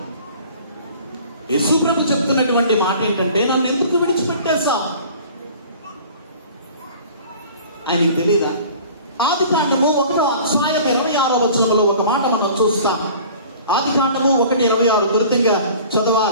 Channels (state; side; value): inverted; both; correlation -0.45